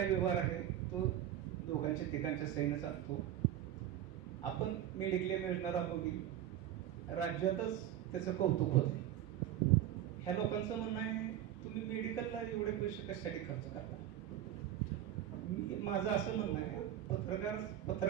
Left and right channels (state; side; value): quieter; left; 11.6 dB